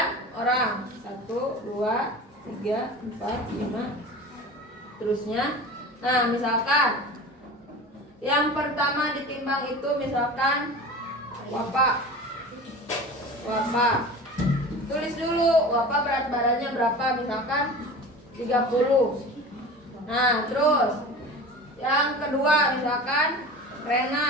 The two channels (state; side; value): normal; both; correlation 0.35